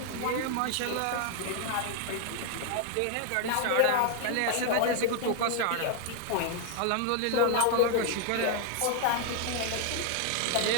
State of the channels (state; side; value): different; both; correlation 0.00